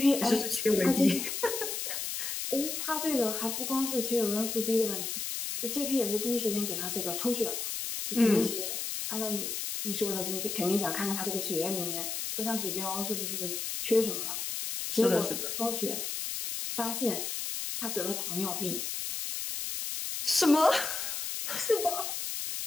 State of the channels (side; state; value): left; noise; hiss, 3 dB below the sound